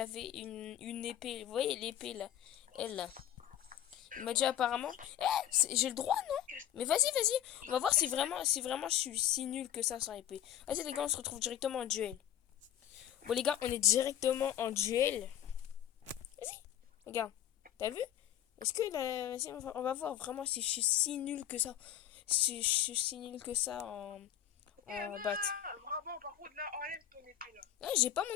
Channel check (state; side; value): quieter; right; 11.4 dB